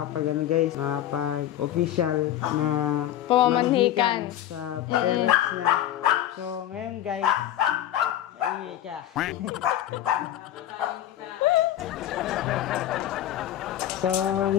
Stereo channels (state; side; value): quieter; right; 12.3 dB